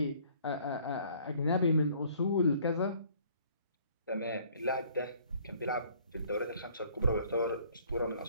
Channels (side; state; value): both; inverted; correlation -0.58